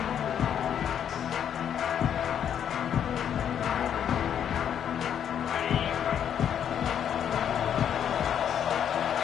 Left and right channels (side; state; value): right; quieter; 9.0 dB